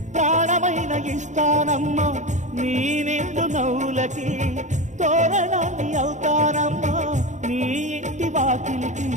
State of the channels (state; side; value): late; left; 0.35 ms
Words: ప్రాణమైన ఇస్తానమ్మా నీ నిండు నవ్వులకి తోరణాన్ని అవుతానమ్మా నీ ఇంటి వాకిలికి